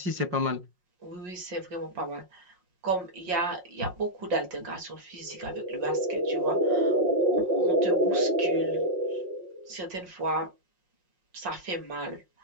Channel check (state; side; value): late; left; 5.5 ms